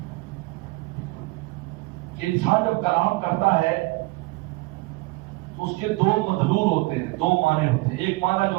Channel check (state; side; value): quieter; left; 23.2 dB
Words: کہ انسان جب کلام کرتا ہے تو اس کے دو مدلول ہوتے ہیں, دو معنی ہوتے ہیں. ایک معنی